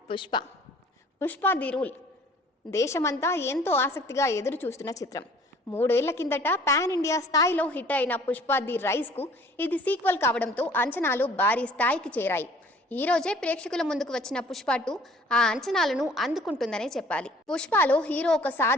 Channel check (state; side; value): normal; both; correlation 0.53